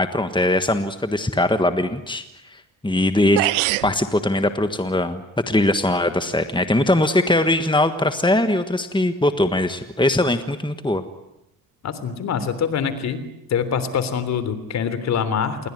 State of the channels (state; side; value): normal; both; correlation 0.50